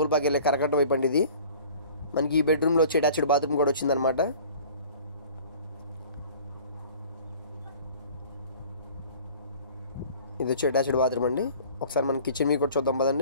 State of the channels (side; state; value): both; inverted; correlation -0.47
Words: వెళ్ళే కరకట్ట వైపు అండి. ఇది మనకి ఈ బెడ్రూమ్లో వచ్చి అటాచ్డ్ బాత్రూమ్ కూడా వచ్చిందనమాట. ఇది వచ్చి అటాచ్డ్ బాత్రూమ్ అండి. ఒకసారి మన కిచెన్ మీకు కూడా చూద్దాం